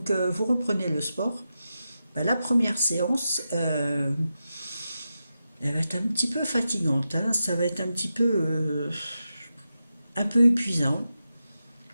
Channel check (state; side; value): inverted; both; correlation -0.89